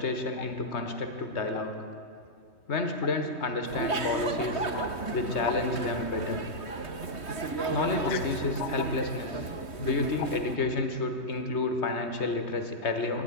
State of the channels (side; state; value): right; late; 3.2 ms